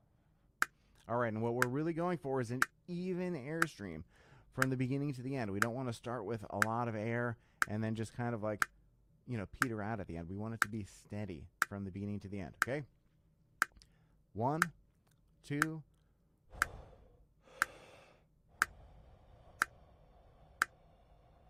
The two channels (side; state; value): both; identical; correlation 1.00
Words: All right, and what we're really going for is an even airstream from the beginning to the end. We don't want to start with a lot of air and then just kind of like, you know, peter out at the end. We want it to be steady from the beginning to the end, okay? 1, 2.